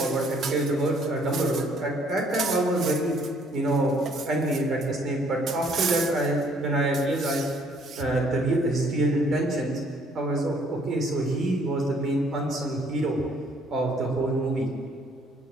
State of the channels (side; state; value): both; normal; correlation 0.63